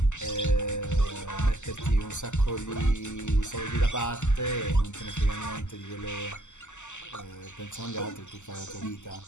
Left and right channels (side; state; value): right; late; 0.84 ms